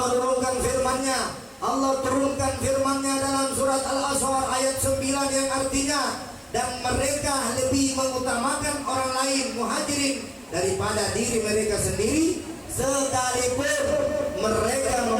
firman-Nya. Allah turunkan firman-Nya dalam surat Al-Asr ayat 9 yang artinya, dan mereka lebih mengutamakan orang lain muhajirin daripada diri mereka sendiri, sekalipun mereka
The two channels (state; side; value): identical; both; correlation 1.00